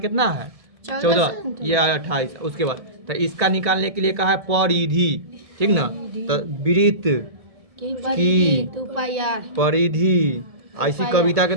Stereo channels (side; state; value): left; late; 1.7 ms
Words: है 14, ये 28। उसके बाद तो इसका निकालने के लिए कहा है परिधि, ठीक ना। तो वृत्त की परिधि ऐसी कविता के